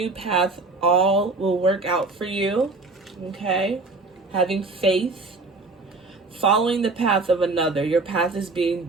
path, all will work out for you, okay? Having faith, following the path of another, your path is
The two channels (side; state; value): left; quieter; 3.6 dB